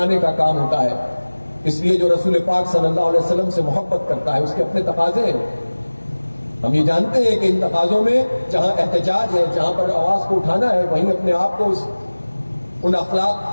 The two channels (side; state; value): both; inverted; correlation -1.00